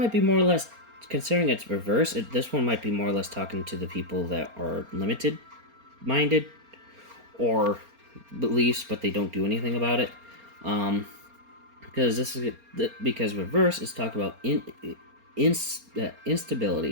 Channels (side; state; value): left; late; 4.3 ms